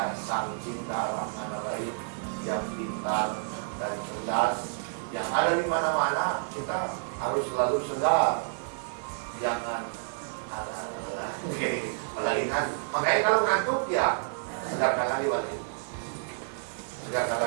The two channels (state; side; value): silent; left; digital silence